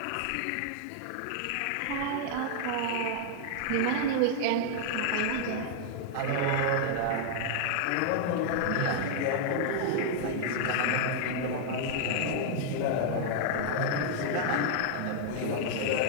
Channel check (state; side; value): different; both; correlation -0.01